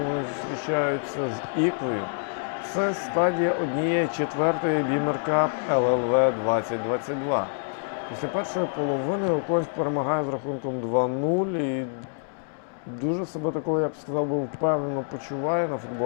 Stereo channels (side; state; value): right; silent; digital silence